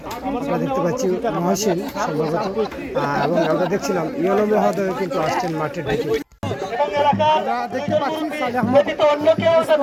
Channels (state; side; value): identical; both; correlation 1.00